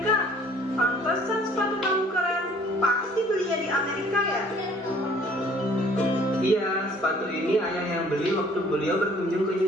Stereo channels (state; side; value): normal; both; correlation 0.56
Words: Pantesan sepatu kamu keren. Pasti belinya di Amerika ya? Iya, sepatu ini ayah yang beli waktu beliau berkunjung ke